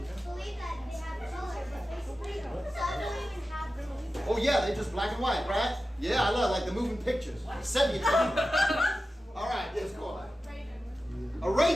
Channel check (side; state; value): both; normal; correlation 0.93